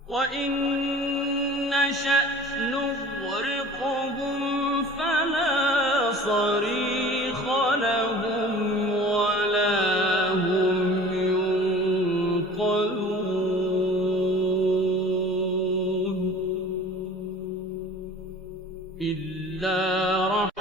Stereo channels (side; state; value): both; normal; correlation 0.43